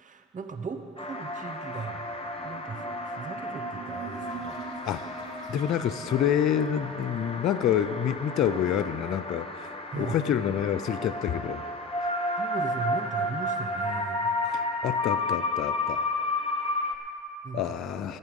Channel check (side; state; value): right; quieter; 4.7 dB